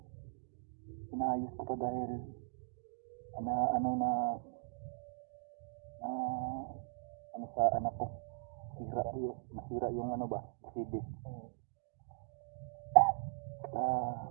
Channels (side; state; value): left; silent; digital silence